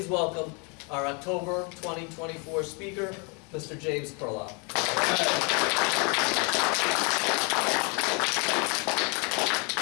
welcome our October 2024 speaker, Mr. James Perloff.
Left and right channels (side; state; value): right; quieter; 33.4 dB